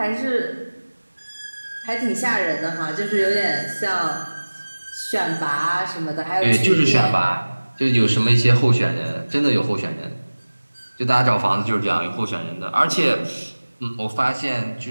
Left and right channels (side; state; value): both; inverted; correlation -1.00